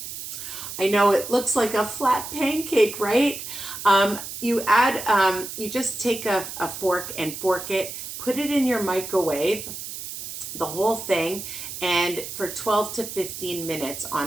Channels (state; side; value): noise; right; hiss, 9 dB below the sound